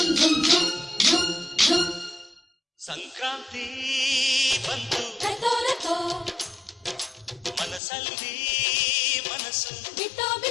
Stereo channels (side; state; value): right; drops out; at 7.8 s